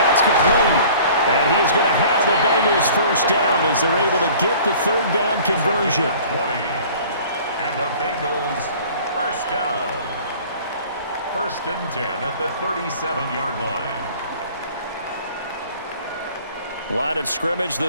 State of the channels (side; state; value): both; inverted; correlation -0.48